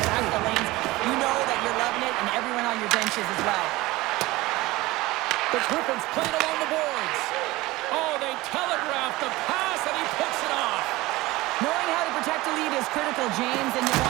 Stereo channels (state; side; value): quieter; left; 19.7 dB